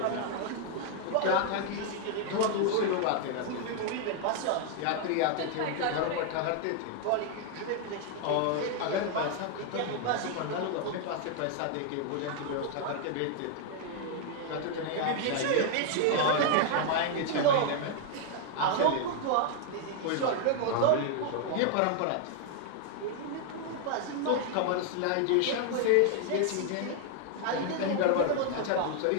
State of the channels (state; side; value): different; both; correlation 0.00